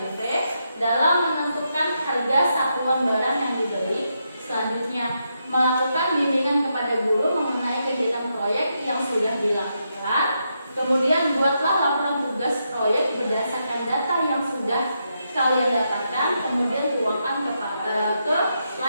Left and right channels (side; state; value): both; inverted; correlation -0.82